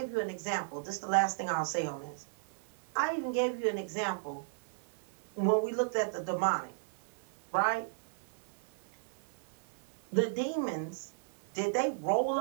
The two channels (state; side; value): silent; left; 54 dB below the other